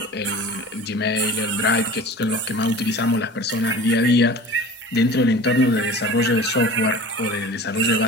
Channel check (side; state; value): both; normal; correlation 0.39